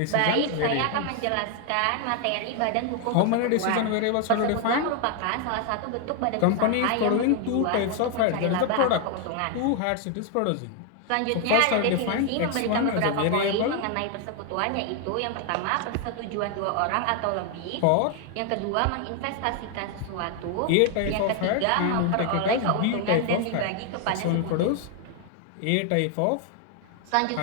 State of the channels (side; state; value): both; different; correlation 0.01